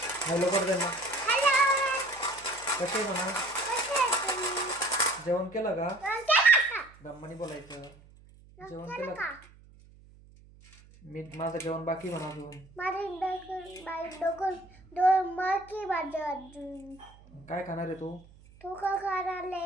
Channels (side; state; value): right; noise; hum, 24 dB below the sound